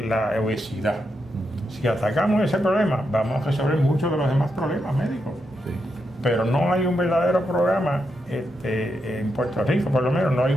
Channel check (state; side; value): normal; both; correlation 0.84